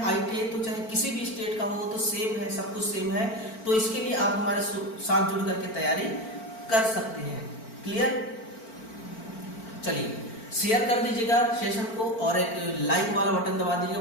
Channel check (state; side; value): late; right; 4.4 ms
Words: आईटीआई तो चाहे किसी भी स्टेट का हो तो सेम है, सब कुछ सेम है। तो इसके लिए आप हमारे साथ जुड़ करके तैयारी कर सकते हैं। क्लियर? चलिए शेयर कर दीजिएगा सेशन को, और एक लाइक वाला बटन दबा दीजिएगा।